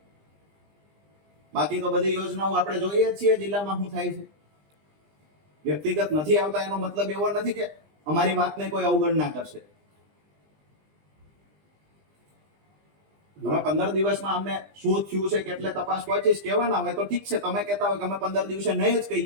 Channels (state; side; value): late; left; 20 ms